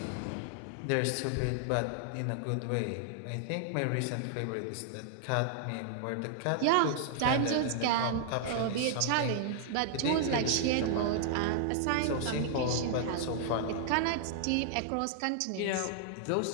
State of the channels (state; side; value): different; both; correlation -0.01